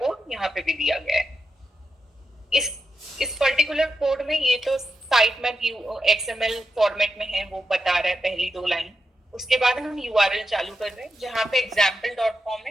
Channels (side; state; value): both; normal; correlation 0.87